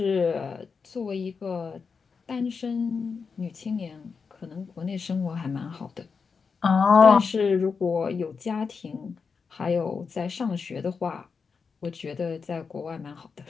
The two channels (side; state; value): right; quieter; 5.4 dB